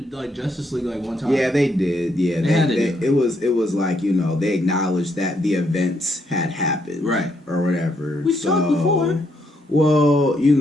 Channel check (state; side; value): normal; both; correlation 0.75